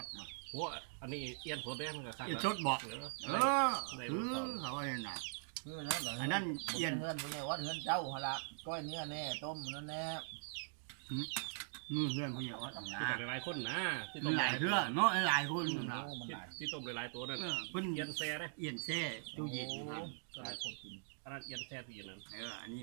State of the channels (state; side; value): silent; left; digital silence